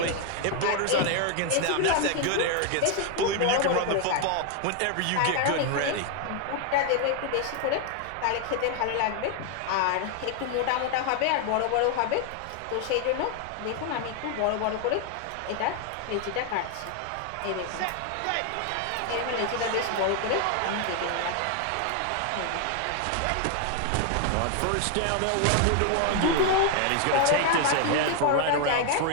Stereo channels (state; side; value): different; both; correlation 0.00